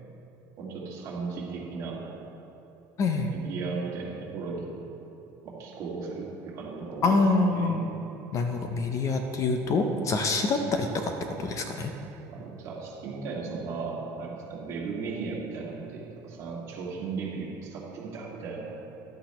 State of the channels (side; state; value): both; normal; correlation 0.51